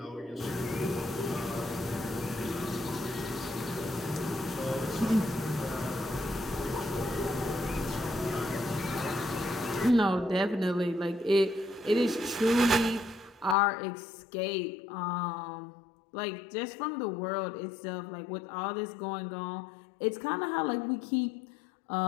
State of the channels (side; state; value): right; drops out; at 13.6 s